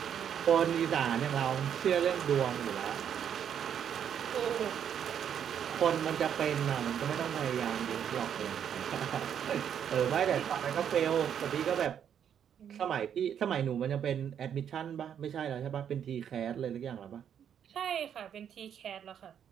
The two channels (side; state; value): left; quieter; 8.7 dB